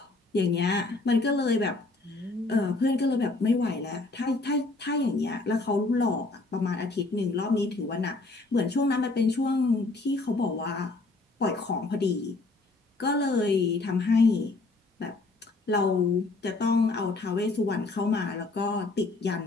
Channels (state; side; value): quieter; right; 3.3 dB